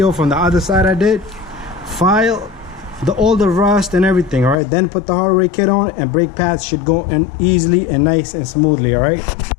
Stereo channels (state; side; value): drops out; right; at 4.5 s